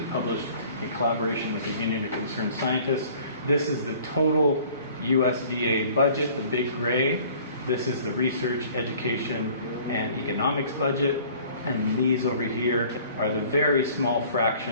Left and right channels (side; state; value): both; inverted; correlation -0.51